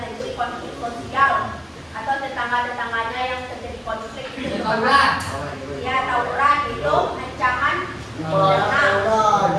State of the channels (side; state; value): both; identical; correlation 1.00